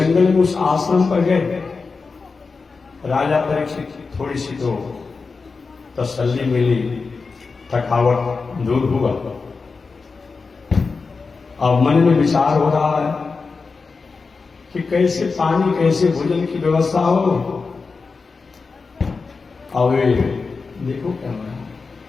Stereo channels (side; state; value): right; quieter; 4.5 dB